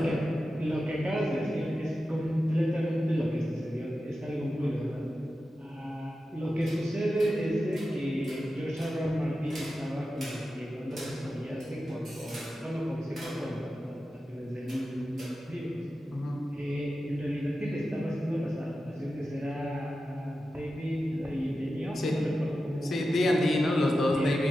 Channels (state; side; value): normal; both; correlation 0.92